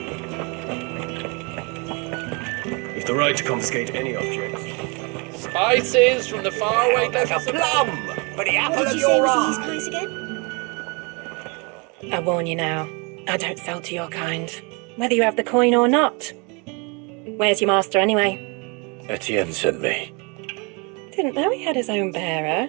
You've the right to confiscate any objects. Spices from the faraway Like a plum for the apple of your eye. I warn you now, I don't sell to your kind, whether you have the coin or not. Where's your master anyway? Etienne sent me. Didn't know he had his own bearer.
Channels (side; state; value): left; quieter; 31.4 dB